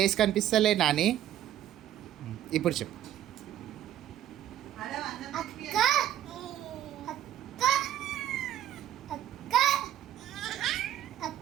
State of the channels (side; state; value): left; quieter; 11.8 dB